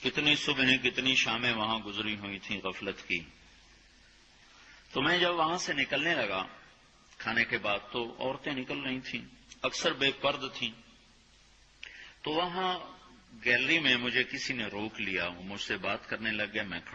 کتنی صبحیں کتنی شامیں وہاں گزری ہوئی تھیں غفلت کی. تو میں جب وہاں سے نکلنے لگا کھانے کے بعد تو عورتیں نکل رہی تھیں، اکثر بے پرد تھیں. تو وہاں گیلری میں مجھے کسی نے روک لیا، وہ مجھ سے بات کرنے لگ گیا. میں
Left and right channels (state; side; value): identical; both; correlation 1.00